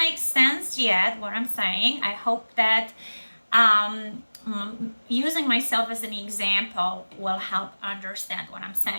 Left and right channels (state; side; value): inverted; both; correlation -1.00